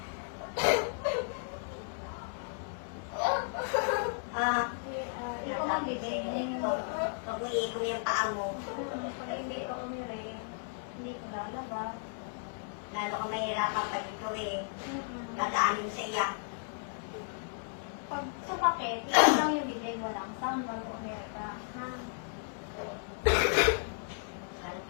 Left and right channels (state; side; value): silent; right; digital silence